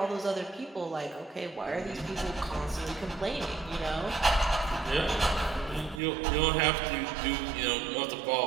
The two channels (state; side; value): drops out; left; at 6.0 s